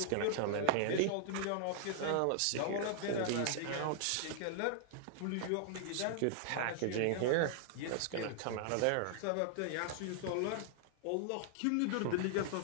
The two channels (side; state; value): both; different; correlation -0.01